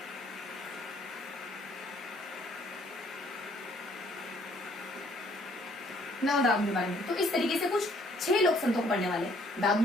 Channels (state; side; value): normal; both; correlation 0.63